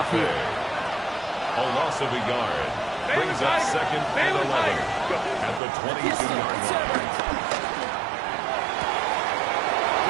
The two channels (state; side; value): drops out; left; at 5.6 s